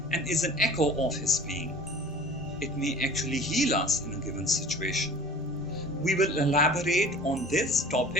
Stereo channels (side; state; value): both; normal; correlation 0.44